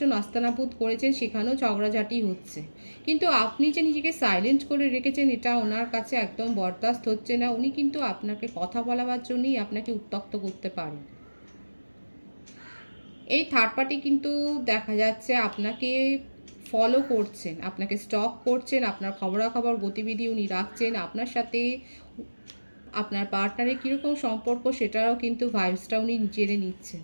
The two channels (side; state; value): both; inverted; correlation -1.00